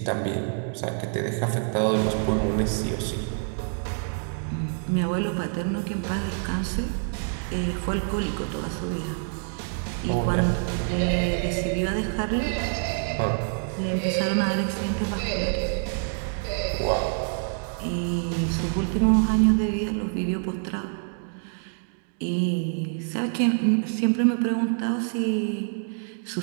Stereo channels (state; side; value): silent; left; 59 dB below the other